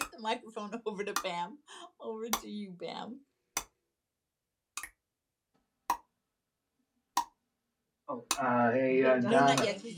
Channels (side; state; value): both; identical; correlation 1.00